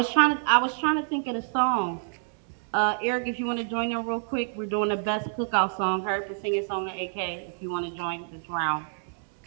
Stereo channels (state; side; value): silent; left; digital silence